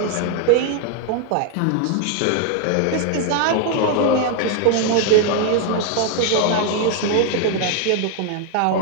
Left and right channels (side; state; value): both; different; correlation 0.00